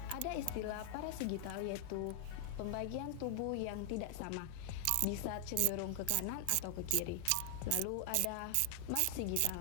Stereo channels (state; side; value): different; both; correlation 0.00